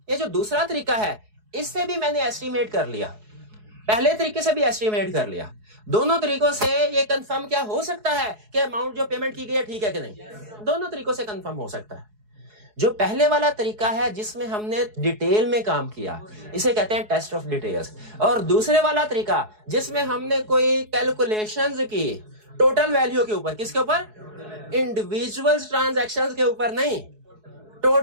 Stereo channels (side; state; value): left; late; 4.7 ms